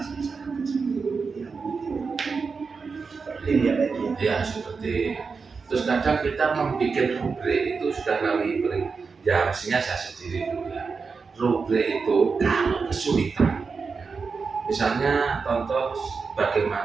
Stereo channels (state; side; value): quieter; left; 5.0 dB